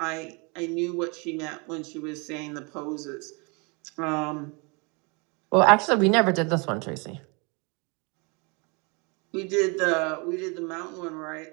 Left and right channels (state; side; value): quieter; left; 31.0 dB